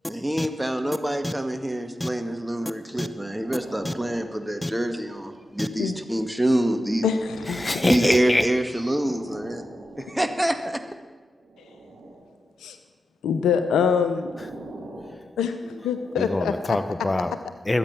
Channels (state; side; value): normal; both; correlation 0.88